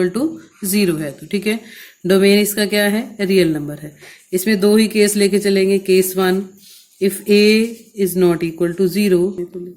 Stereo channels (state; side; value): identical; both; correlation 1.00